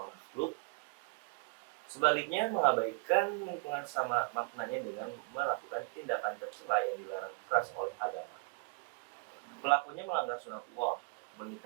makhluk. Sebaliknya, mengabaikan lingkungan sama maknanya dengan melakukan tindakan tercela yang dilarang keras oleh agama. Pelakunya melanggar sunatullah,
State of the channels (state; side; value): quieter; left; 31.0 dB